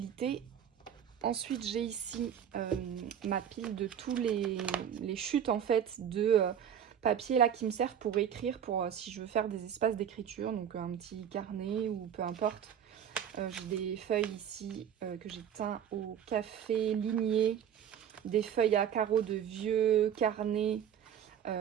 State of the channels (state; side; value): quieter; left; 9.0 dB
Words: Ensuite, j'ai ici ma pile de tous les chutes en fait de papier là qui me servent pour écrire, pour si je veux faire des espaces d'écriture, donc un petit carnet ou peu importe. J'ai des feuilles ici que j'ai teint au café ligné, des feuilles à carreaux de vieux carnets,